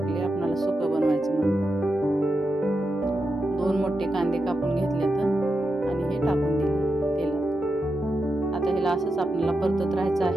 आपल्याला सुकं बनवायचं म्हणून. 2 मोठे कांदे कापून घेतले तर आणि हे टाकून दिले तेलात. आता ह्याला असंच आपल्याला परतत राहायचं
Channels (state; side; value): normal; both; correlation 0.88